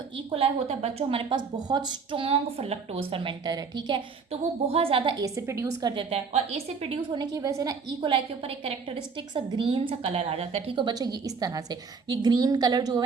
ई कोलाई होता है बच्चों हमारे पास बहुत स्ट्रॉन्ग लैक्टोज फर्मेंटर है, ठीक है। तो वो बहुत ज़्यादा एसिड प्रोड्यूस कर देता है और एसिड प्रोड्यूस होने की वजह से ना ई कोलाई के ऊपर एक कैरेक्टरिस्टिक सा ग्रीन सा कलर आ जाता है, ठीक है बच्चों। ये इस तरह से ये ग्रीन कलर जो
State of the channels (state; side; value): quieter; left; 5.3 dB